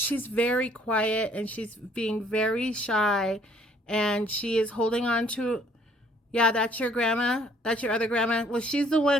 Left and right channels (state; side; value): normal; both; correlation 0.61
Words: very quiet and she's being very shy, and she is holding on to, yeah, that's your grandma. That's your other grandma. Well, she's the